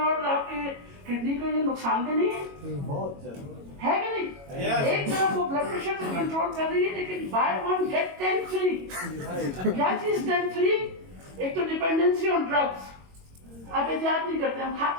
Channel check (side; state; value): left; late; 22 ms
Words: और आपके किडनी के लिए नुकसानदेह नहीं है? बहुत ज्यादा है कि नहीं? एक तरफ वो ब्लड प्रेशर को कंट्रोल कर रही है, लेकिन बाय 1 गेट 10 फ्री। क्या चीज 10 फ्री? एक तो डिपेंडेंसी ऑन ड्रग्स, आप एहतियात नहीं करते, हम खा